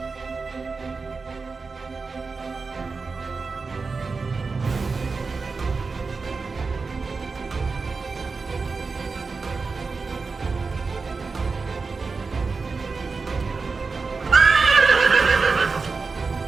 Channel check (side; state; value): left; quieter; 4.4 dB